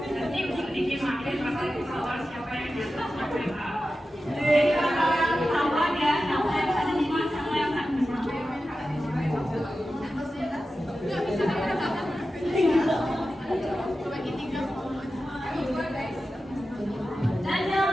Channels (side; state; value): both; normal; correlation 0.93